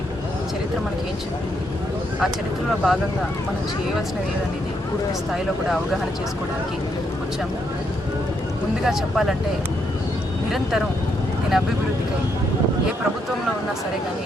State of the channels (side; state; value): both; normal; correlation 0.76